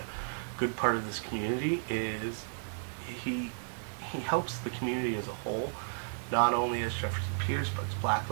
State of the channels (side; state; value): left; silent; digital silence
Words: good part of this community. Is he helps the community as a whole, not only as Jefferson Pierce, but as Black